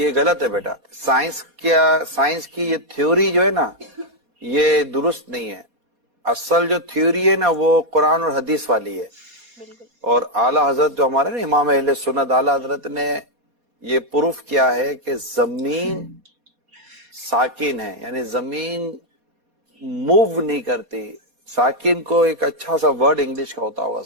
गलत है बेटा। साइंस की ये थ्योरी जो है ना, ये दुरुस्त नहीं है। असल जो थ्योरी है ना, वो कुरान और हदीस वाली है। और आला हजरत जो हमारे ना इमाम अहले सुन्नत आला हजरत ने ये प्रूफ किया है कि जमीन साकिन है, यानी जमीन मूव नहीं करती। साकिन को एक अच्छा सा वर्ड इंग्लिश का होता होगा,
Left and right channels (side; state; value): left; late; 4.2 ms